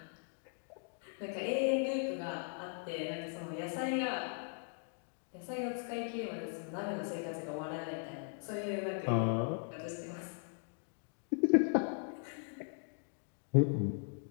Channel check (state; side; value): silent; right; 52 dB below the other